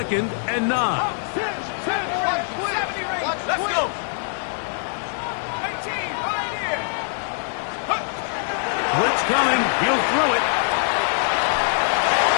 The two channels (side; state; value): right; silent; digital silence